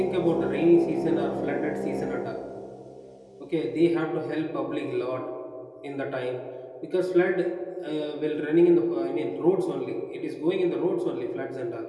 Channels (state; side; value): identical; both; correlation 1.00